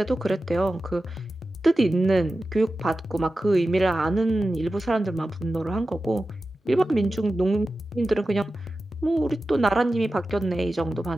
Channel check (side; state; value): both; normal; correlation 0.93